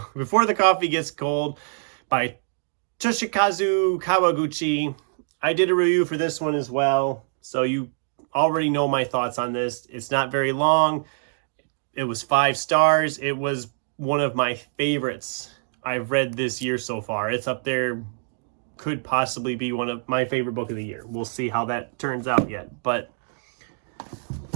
Before the Coffee Gets Cold by Toshikazu Kawaguchi. I did a review for this one as well, so you already know my thoughts on this. It's not very long. It was 5 stars. It was one of my favorites I've read this year so far. It's up there. Could possibly be one of my favorite book of the year. We'll see how that turns out yet. But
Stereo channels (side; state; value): left; silent; digital silence